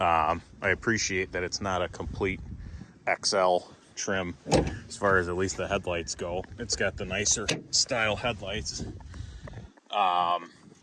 appreciate that it's not a complete XL trim as far as at least the headlights go. It's got the nicer style headlights.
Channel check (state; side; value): identical; both; correlation 1.00